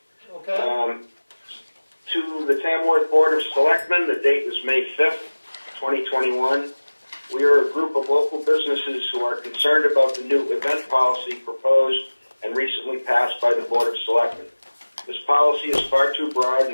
Okay. To the Tamworth Board of Selectmen, the date is May 5th, 2021. We are a group of local businesses who are concerned about the new event policy proposed and recently passed by the Board of Selectmen. This policy is far too broad,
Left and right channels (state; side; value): inverted; both; correlation -1.00